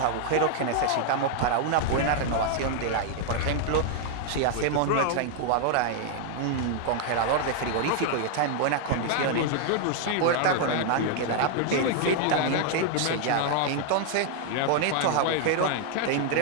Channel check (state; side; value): different; both; correlation 0.00